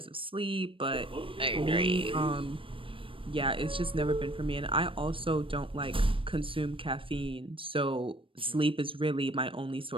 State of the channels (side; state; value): left; late; 0.25 ms